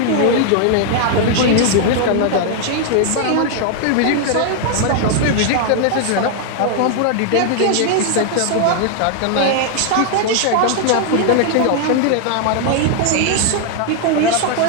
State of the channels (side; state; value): both; different; correlation 0.00